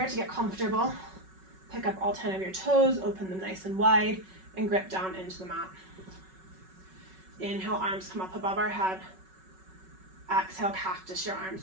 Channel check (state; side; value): late; left; 5.4 ms